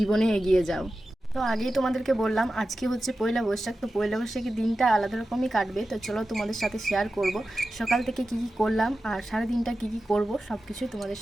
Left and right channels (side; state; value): both; normal; correlation 0.93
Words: এগিয়ে যাও। তো আগেই তোমাদেরকে বললাম আজকে হচ্ছে পয়লা বৈশাখ, তো পয়লা বৈশাখের দিনটা আলাদা রকমই কাটবে। তো চলো তোমাদের সাথে শেয়ার করব সকাল থেকে কি কি করলাম আর সারা দিনটা কি কি করব, সব কিছুই তোমাদের